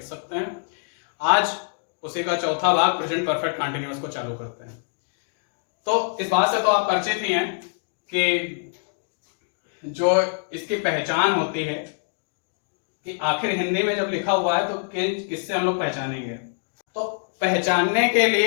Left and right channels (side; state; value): right; silent; digital silence